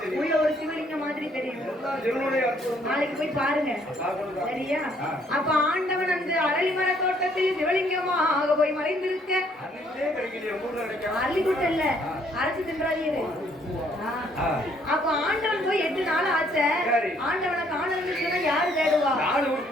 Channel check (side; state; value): both; normal; correlation 0.66